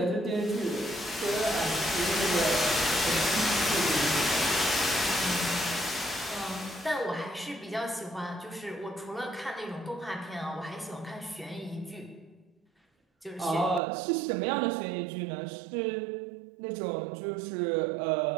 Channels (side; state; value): left; drops out; at 13.8 s